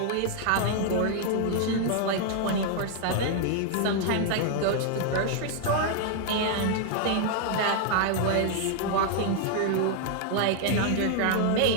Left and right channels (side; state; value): both; different; correlation 0.00